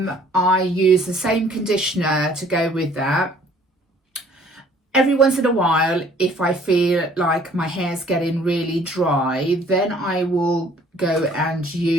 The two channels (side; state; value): both; normal; correlation 0.57